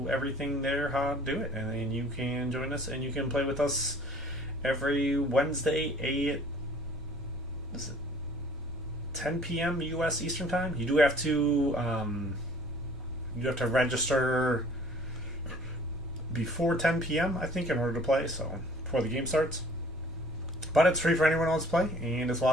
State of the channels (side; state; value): both; normal; correlation 0.53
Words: everything there, how to do it. And then you can join us and you can play with us every Wednesday at 10 p.m. U.S. Eastern Time. You do have to register before 10 p.m. I think in order to play, so before the game starts. But it's free for anyone who wants to play, and it's a